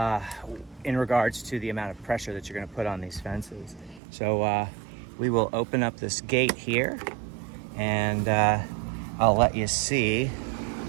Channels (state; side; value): drops out; left; at 4.0 s